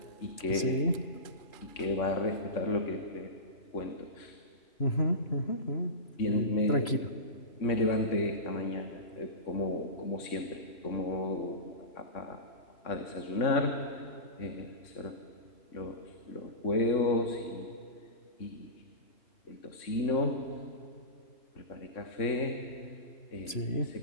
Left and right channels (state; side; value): late; right; 3.0 ms